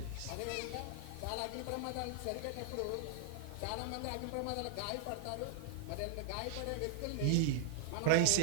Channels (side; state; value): both; different; correlation -0.01